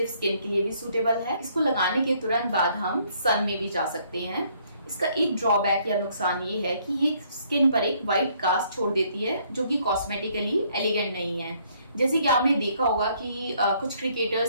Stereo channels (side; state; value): both; inverted; correlation -0.66